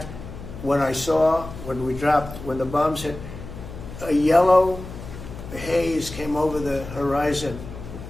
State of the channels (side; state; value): left; noise; hum, 12 dB below the sound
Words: when the bombs hit, a yellow haze came over the horizon